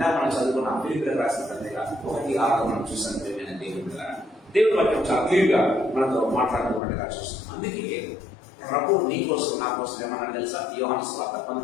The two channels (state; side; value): drops out; right; at 6.8 s